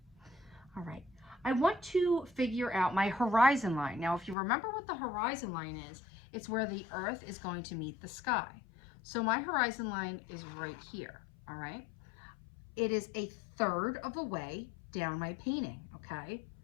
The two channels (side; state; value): right; drops out; at 4.4 s